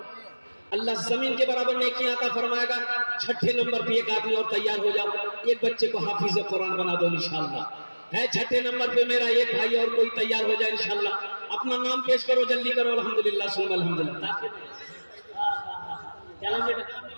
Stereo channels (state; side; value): inverted; both; correlation -1.00